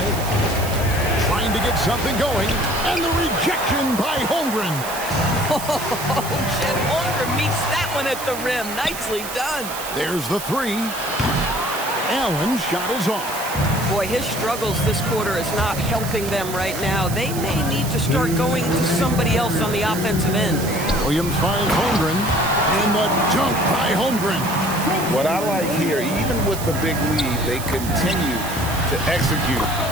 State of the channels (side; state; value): right; noise; hiss, 10 dB below the sound